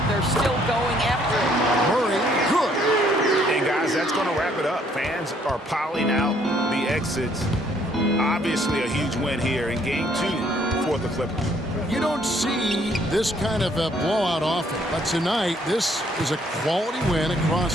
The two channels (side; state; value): both; normal; correlation 0.65